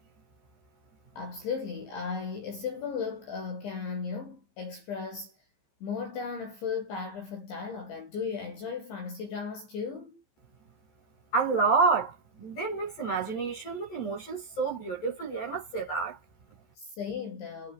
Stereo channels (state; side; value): late; right; 15 ms